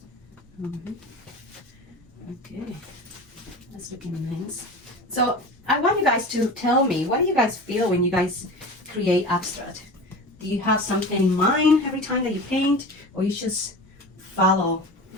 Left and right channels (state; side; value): normal; both; correlation 0.32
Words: Okay, that's looking nice. So I want you guys to tell me, what do you guys feel when you guys create abstract? Do you have something in mind every time that you paint, or you just follow